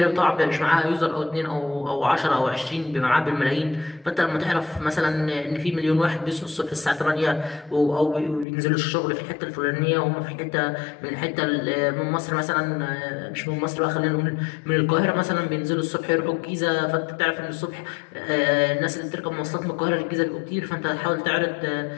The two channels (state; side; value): drops out; right; at 8.5 s